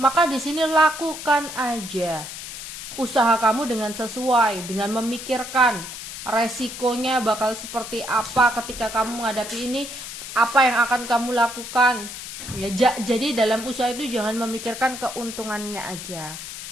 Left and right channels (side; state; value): left; noise; hiss, 10 dB below the sound